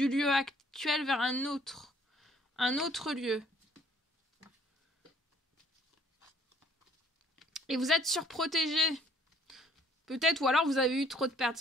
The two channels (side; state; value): both; normal; correlation 0.60